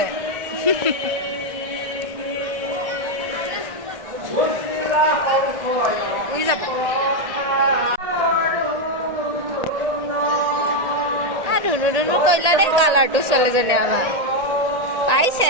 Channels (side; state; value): left; late; 1.8 ms